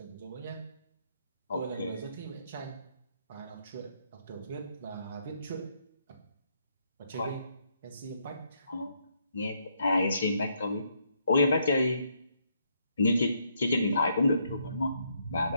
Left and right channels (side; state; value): both; inverted; correlation -0.74